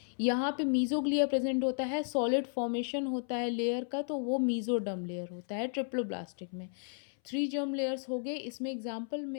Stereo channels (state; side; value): silent; right; 55 dB below the other